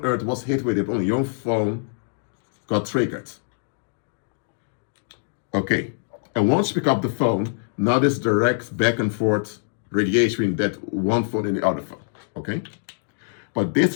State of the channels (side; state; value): right; silent; digital silence